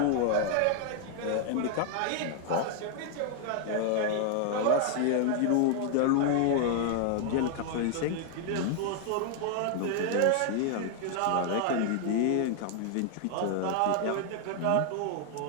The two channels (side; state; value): both; different; correlation 0.00